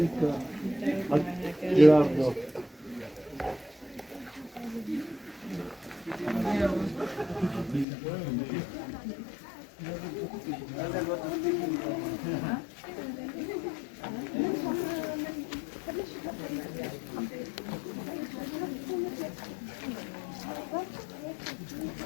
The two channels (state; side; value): drops out; right; at 7.9 s